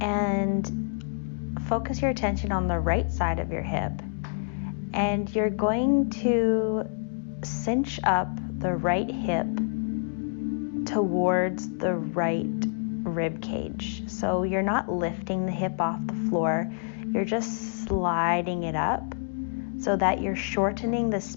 and focus your attention on the right side of your hip. And you're going to cinch up the right hip towards the right rib cage. So you're not lifting the hip off the floor, you're just sliding it up so that you're shortening the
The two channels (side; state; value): right; silent; digital silence